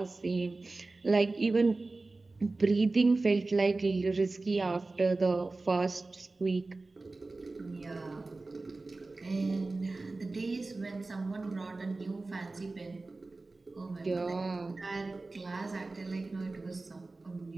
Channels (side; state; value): left; quieter; 3.4 dB